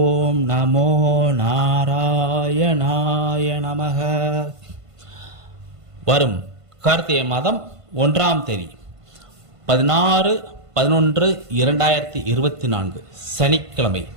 நமோ நாராயணாய நமக. வரும் கார்த்திகை மாதம் 1ஆம் தேதி 16/11/2024 சனிக்கிழமை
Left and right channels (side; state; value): left; late; 1.5 ms